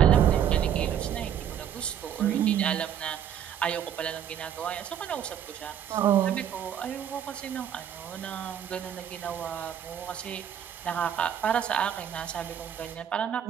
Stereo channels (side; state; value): left; quieter; 9.3 dB